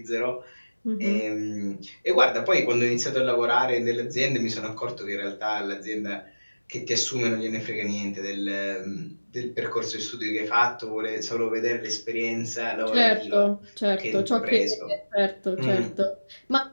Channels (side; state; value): both; inverted; correlation -1.00